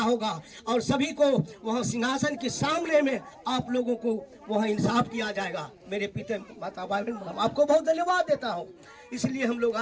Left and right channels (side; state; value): both; identical; correlation 1.00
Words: होगा और सभी को वहां सिंहासन के सामने में आप लोगों को वहां इंसाफ किया जाएगा। मेरे पिता माता बहन, आपको बहुत धन्यवाद देता हूं। इसलिए हम लोग